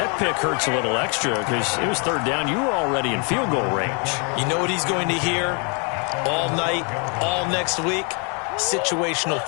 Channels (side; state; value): right; quieter; 36.4 dB